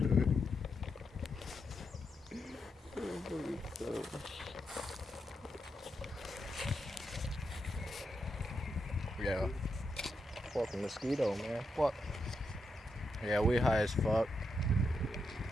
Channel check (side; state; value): both; normal; correlation 0.83